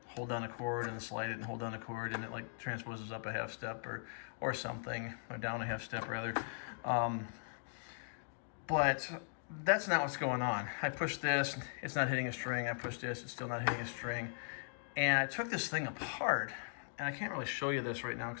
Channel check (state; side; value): silent; right; digital silence